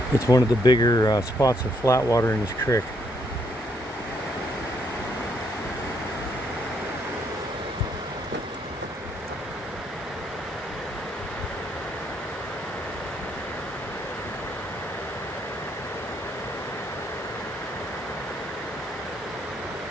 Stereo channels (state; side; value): normal; both; correlation 0.72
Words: It's one of the bigger spots of flat water in this creek.